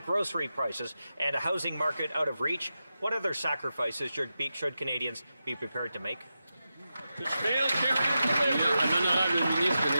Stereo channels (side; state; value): both; inverted; correlation -0.91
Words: grocery prices, and a housing market out of reach, what other sacrifices should Canadians be prepared to make?